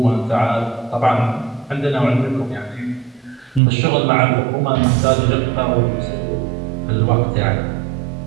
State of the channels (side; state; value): left; drops out; at 3.6 s